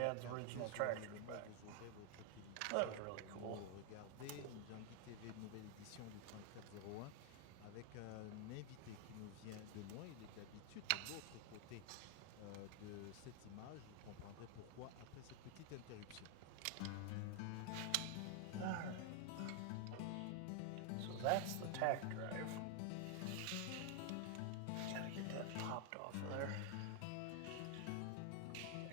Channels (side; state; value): both; different; correlation 0.00